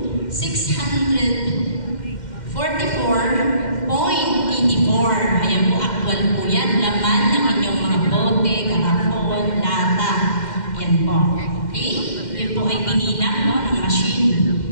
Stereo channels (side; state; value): right; late; 2.1 ms